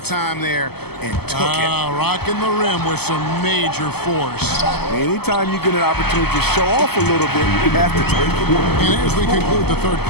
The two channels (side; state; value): right; late; 0.96 ms